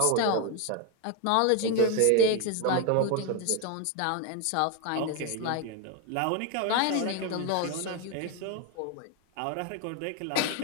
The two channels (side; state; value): both; different; correlation 0.02